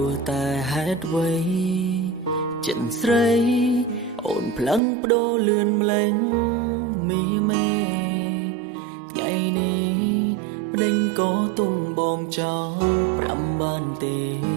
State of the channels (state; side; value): drops out; left; at 4.8 s